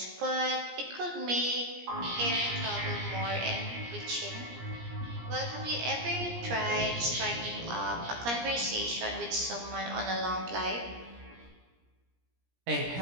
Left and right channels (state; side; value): late; left; 17 ms